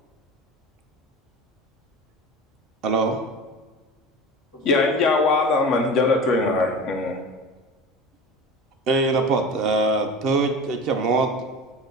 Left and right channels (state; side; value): normal; both; correlation 0.33